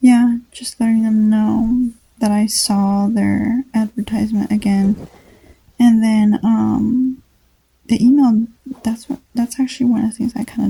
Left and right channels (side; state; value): both; identical; correlation 1.00